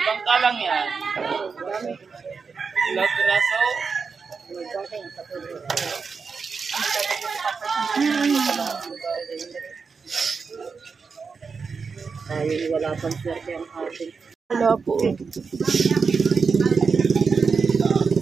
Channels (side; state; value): left; quieter; 5.2 dB